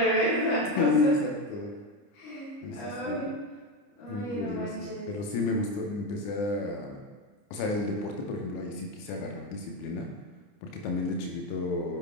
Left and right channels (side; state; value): right; late; 29 ms